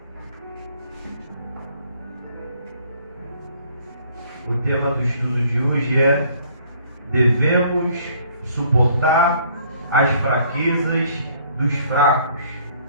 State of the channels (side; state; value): both; inverted; correlation -0.60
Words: O tema do estudo de hoje é: devemos suportar as fraquezas dos fracos.